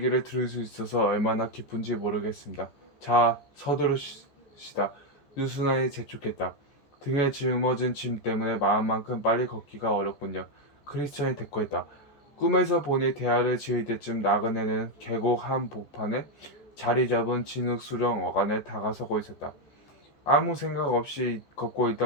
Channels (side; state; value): right; late; 14 ms